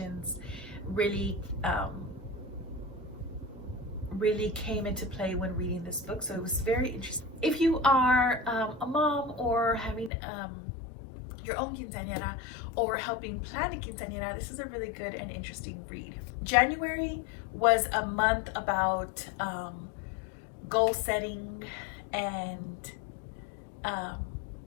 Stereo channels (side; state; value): right; drops out; at 10.1 s